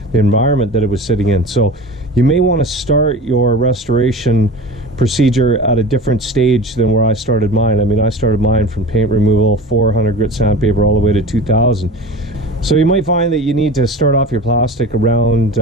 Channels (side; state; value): both; normal; correlation 0.35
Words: the environment that it was sitting in. So you may want to start your restoration procedure at a different stage than where I started mine. I mean, I started mine from paint removal, 400 grit sandpaper, all the way to 2000. So you might find that you need to start off your plastic around